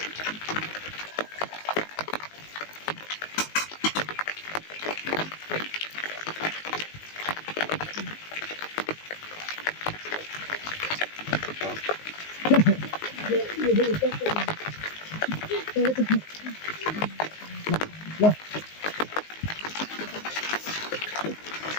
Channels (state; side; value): late; right; 19 ms